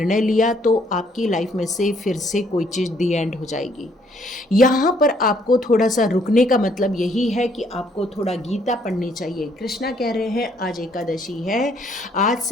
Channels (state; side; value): normal; both; correlation 0.66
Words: लिया, तो आपकी लाइफ में से फिर से कोई चीज़ दी एंड हो जाएगी। यहाँ पर आपको थोड़ा सा रुकने का मतलब यही है कि आपको थोड़ा गीता पढ़नी चाहिए। कृष्णा कह रहे हैं आज एकादशी है, आज